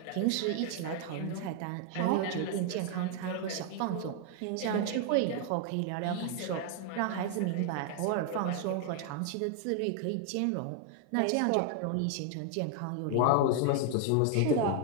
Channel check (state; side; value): different; both; correlation 0.00